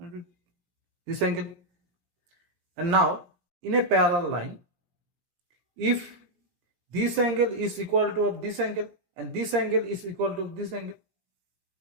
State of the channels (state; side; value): late; left; 17 ms